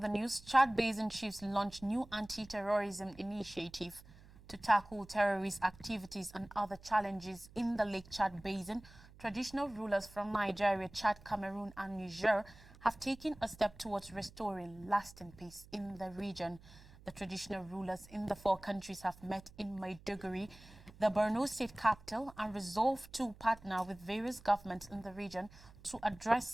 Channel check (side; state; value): right; noise; hum, 21 dB below the sound